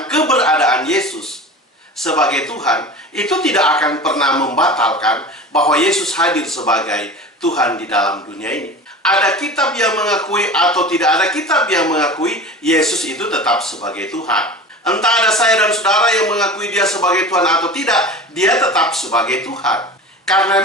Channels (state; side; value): normal; both; correlation 0.34